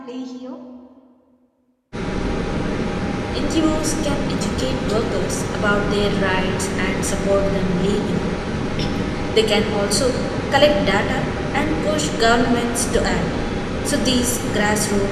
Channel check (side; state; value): both; identical; correlation 1.00